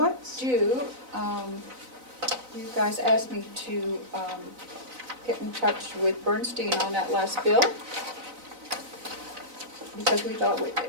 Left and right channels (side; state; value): left; late; 4.0 ms